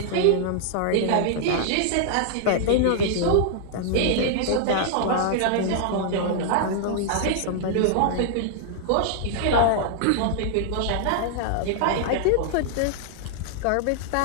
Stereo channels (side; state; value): both; different; correlation -0.01